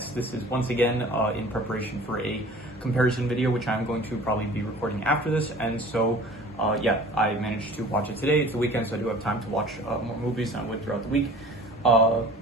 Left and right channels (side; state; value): both; normal; correlation 0.45